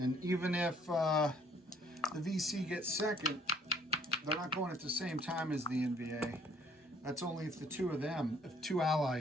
even if the VC gets second, they're not going at the same time as the NVA. That's only if the if two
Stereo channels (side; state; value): both; normal; correlation 0.61